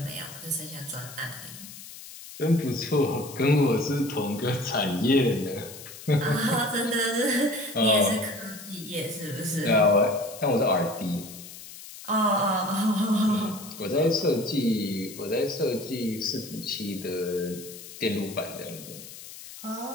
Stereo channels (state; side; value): noise; left; hiss, 15 dB below the sound